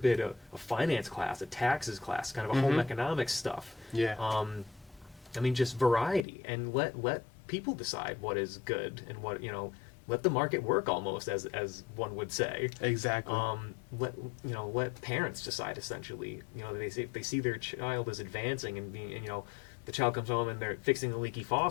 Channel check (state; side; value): drops out; right; at 6.2 s